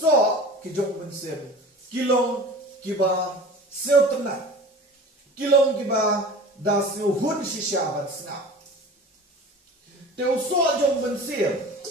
ki jong mensir kilong kiba seutna kilong kiba da hun sisyabat snap te uso jong mensir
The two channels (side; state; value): both; normal; correlation 0.39